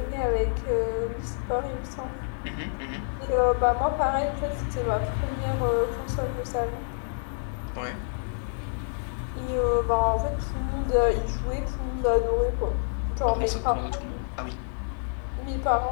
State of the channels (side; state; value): right; silent; digital silence